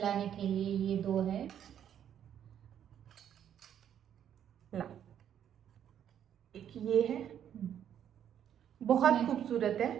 के लिए ये दो है। ला, एक ये है, बहुत खूबसूरत है।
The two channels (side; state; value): left; quieter; 9.6 dB